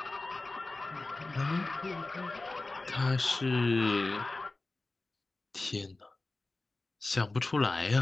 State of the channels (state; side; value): quieter; right; 3.1 dB